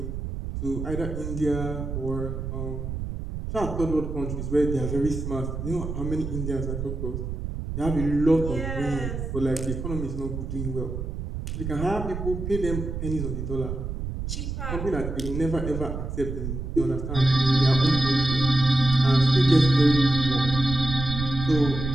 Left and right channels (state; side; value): noise; right; rumble, 5 dB below the sound